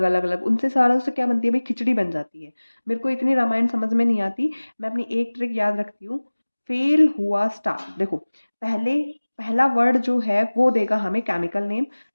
अलग अलग, उनसे सारा उससे क्या बनती है भाई, खिचड़ी बन जाती है। मेरे को इतनी रामायण समझ में नहीं आती, मैं अपनी एक ट्रिक याद रखती हूँ। फेल हुआ स्टार, देखो पहले पहला वर्ड जो है वो देगा हमें केमिकल नेम,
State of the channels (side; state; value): both; inverted; correlation -1.00